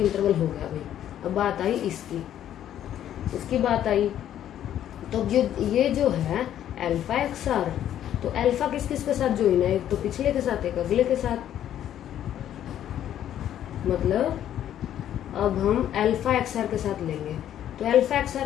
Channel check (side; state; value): right; quieter; 11.0 dB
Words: हो गया भाई। अब बात आई इसकी बात आई, तो ये जो है अल्फा XR, तो अल्फा किस किस के साथ ज्वाइन है, एक तो पिछले के साथ, एक अगले के साथ। मतलब अब हम अल्फा XR के साथ लेंगे, तो अल्फा